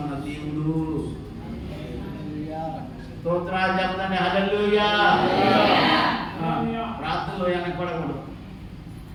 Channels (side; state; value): both; identical; correlation 1.00